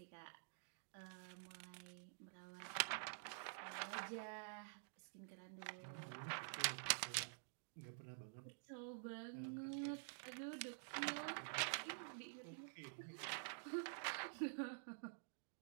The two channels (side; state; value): left; silent; digital silence